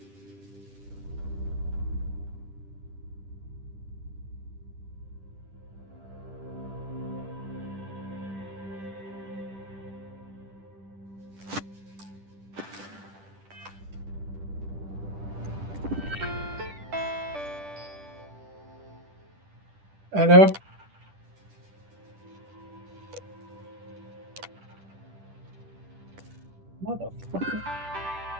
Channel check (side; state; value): left; late; 10 ms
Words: I know. Motherfucker.